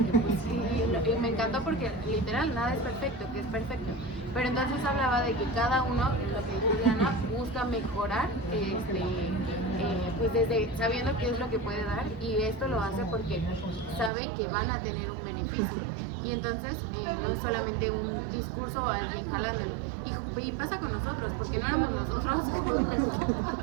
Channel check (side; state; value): left; drops out; at 14.1 s